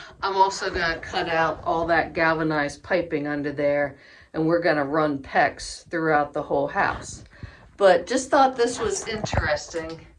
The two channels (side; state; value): both; identical; correlation 1.00